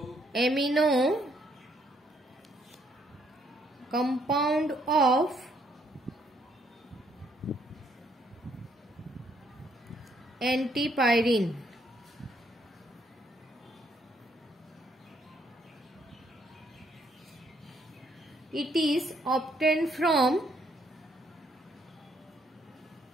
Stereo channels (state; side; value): normal; both; correlation 0.70